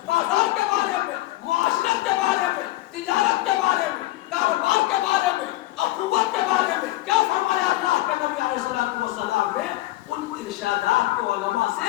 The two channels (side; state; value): right; quieter; 17.4 dB